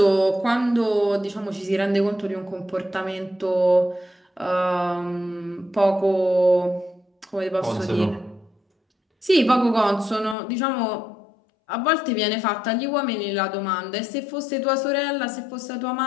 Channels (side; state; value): right; drops out; at 10.4 s